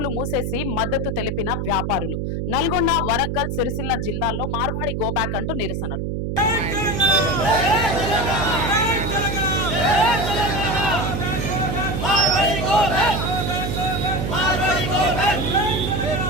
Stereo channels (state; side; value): noise; right; hum, 2 dB below the sound